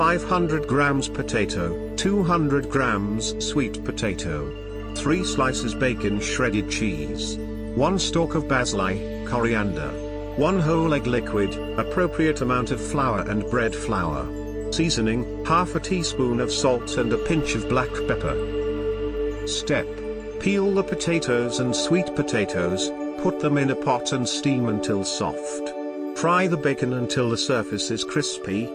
grams potato, 200 grams sweet potato, 3 slices bacon, shredded cheese, 1 stalk of basili, coriander, 1 whole egg liquid, appropriate amount of flour and bread flour. Seasoning, half a teaspoon of salt and a pinch of black pepper. Step: peel the potatoes and sweet potatoes, put them in a pot and steam until soft. Fry the bacon until the surface is crispy,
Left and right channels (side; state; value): both; identical; correlation 1.00